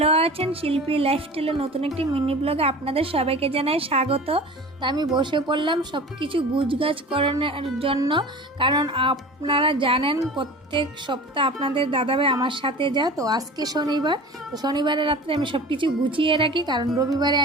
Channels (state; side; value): normal; both; correlation 0.37